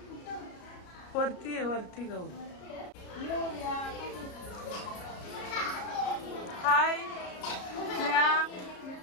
वरती आहे. वरती गौ. हाय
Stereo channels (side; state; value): right; late; 33 ms